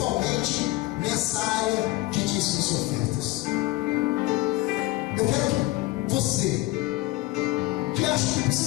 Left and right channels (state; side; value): quieter; right; 19.2 dB